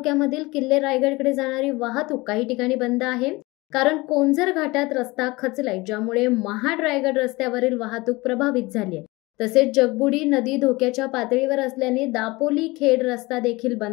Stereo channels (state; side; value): quieter; right; 22.5 dB